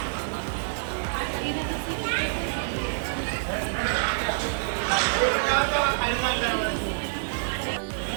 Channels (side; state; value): left; silent; 56 dB below the other